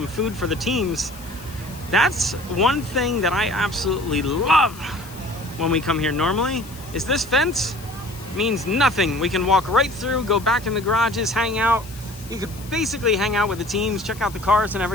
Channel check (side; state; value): left; noise; hiss, 19 dB below the sound